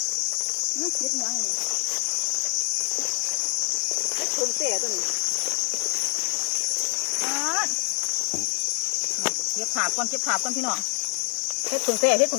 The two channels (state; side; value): silent; right; digital silence